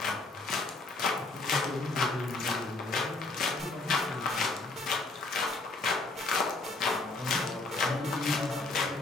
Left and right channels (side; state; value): right; quieter; 3.3 dB